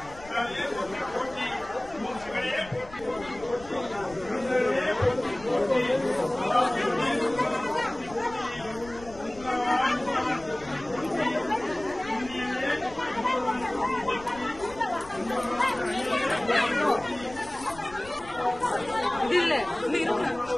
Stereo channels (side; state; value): left; noise; rumble, 19 dB below the sound